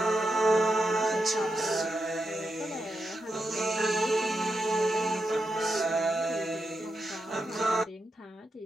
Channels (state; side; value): normal; both; correlation 0.86